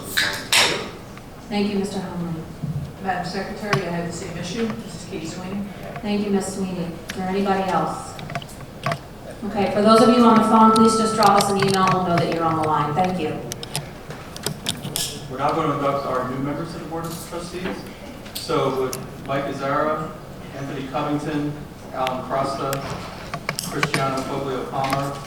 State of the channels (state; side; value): identical; both; correlation 1.00